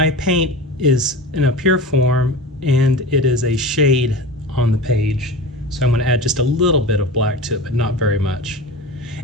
paint is in a pure form and it is a shade on the page. So I'm going to add just a little bit of black to it, but not very much.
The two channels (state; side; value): normal; both; correlation 0.31